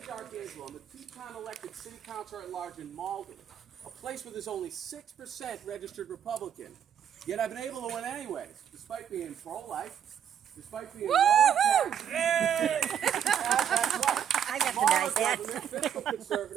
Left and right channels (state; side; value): quieter; left; 9.0 dB